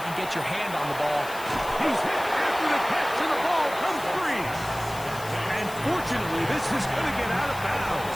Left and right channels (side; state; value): left; noise; hiss, 15 dB below the sound